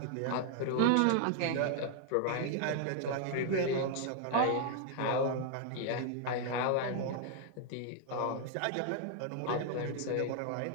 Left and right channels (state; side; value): different; both; correlation 0.00